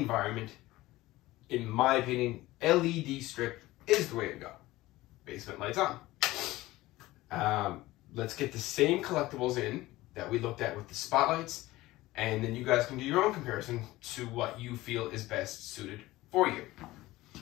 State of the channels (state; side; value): quieter; right; 18.0 dB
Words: in my opinion, LED strip is the way to go. Basement lights on. Let's get the same collectibles in that we looked at with the spotlights, and then you guys can do your own comparison to what you feel is best suited for you.